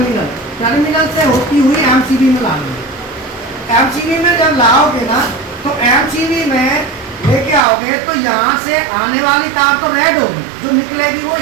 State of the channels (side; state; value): left; drops out; at 7.6 s